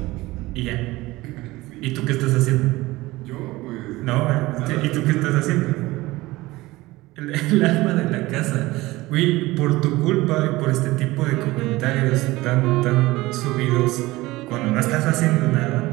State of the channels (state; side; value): quieter; left; 19.5 dB